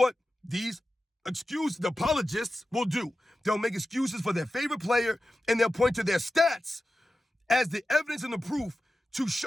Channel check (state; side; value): normal; both; correlation 0.93